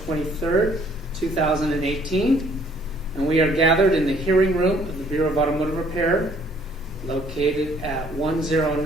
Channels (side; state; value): both; normal; correlation 0.62